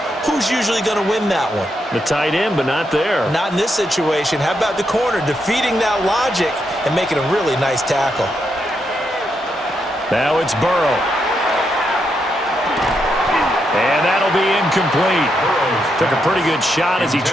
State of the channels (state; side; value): normal; both; correlation 0.81